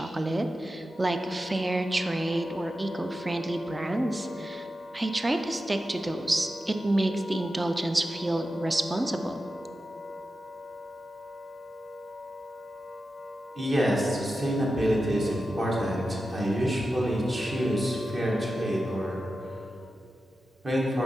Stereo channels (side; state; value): both; normal; correlation 0.92